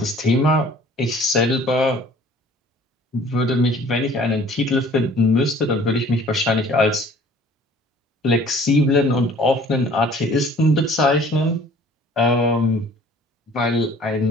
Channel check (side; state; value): both; normal; correlation 0.51